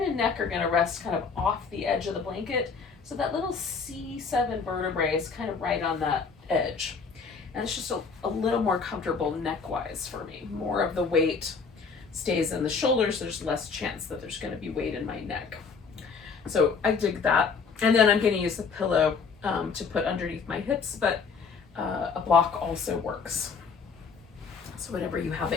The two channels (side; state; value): right; quieter; 5.3 dB